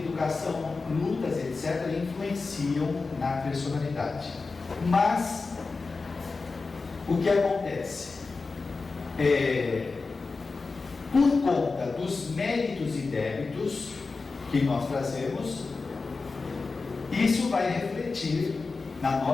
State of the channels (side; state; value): right; quieter; 4.1 dB